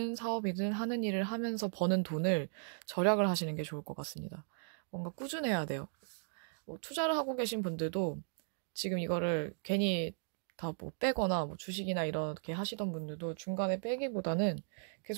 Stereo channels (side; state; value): left; silent; digital silence